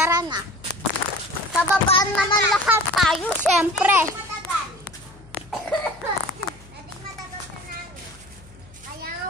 na. Pababaan naman lahat tayo, syempre. Matagal. Dating matagal sa namin. Kaya nga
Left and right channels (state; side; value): noise; left; hum, 23 dB below the sound